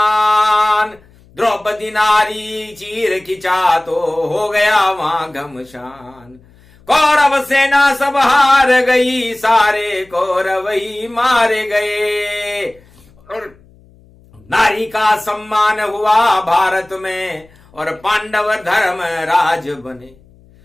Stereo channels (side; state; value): left; noise; hum, 28 dB below the sound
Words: द्रौपदी नारी चीर खिंचा तो हो गया वहां घमशान। कौरव सेना सब हार गई, सारे कौरव ही मारे गए, और नारी का सम्मान हुआ भारत में, और पांडव धर्म राज बने।